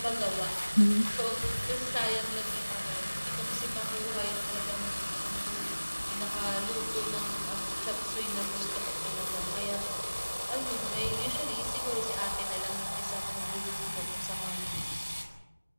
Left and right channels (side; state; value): both; inverted; correlation -1.00